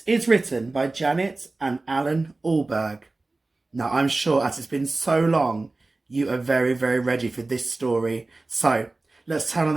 is written by Janet and Alan Allberg. Now, I'm sure as it's been so long, you are very, very ready for this story. So, let's turn on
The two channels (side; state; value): left; quieter; 3.2 dB